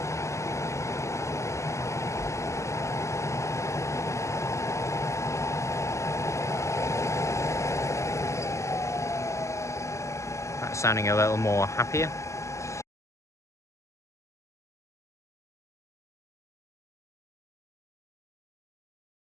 That's sounding a little more happier.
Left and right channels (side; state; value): right; late; 0.14 ms